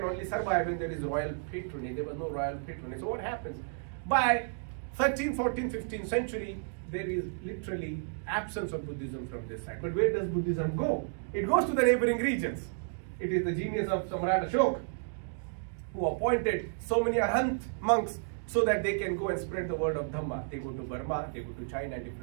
only survive when there is royal patronage. There was no royal patronage. So what happens? By 13th, 14th, 15th century, there is literally absence of Buddhism from this side. But where does Buddhism go? It goes to the neighboring regions. It is the genius of Samrat Ashok, who appointed so many Arhat monks so that they can go and spread the word of Dhamma. They go to Burma, they go to China and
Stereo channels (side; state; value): left; silent; digital silence